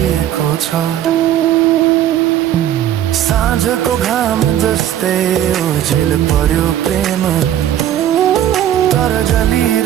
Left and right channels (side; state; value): left; quieter; 11.5 dB